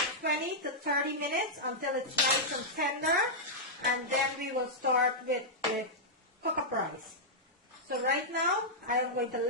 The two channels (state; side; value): normal; both; correlation -0.08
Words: 20 to 30 minutes until it's nice and tender, and then we will start with the cook-up rice. So right now I am going to